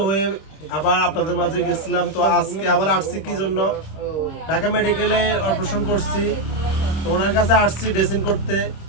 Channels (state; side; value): late; right; 26 ms